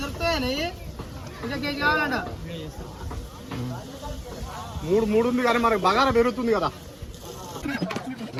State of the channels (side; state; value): both; identical; correlation 1.00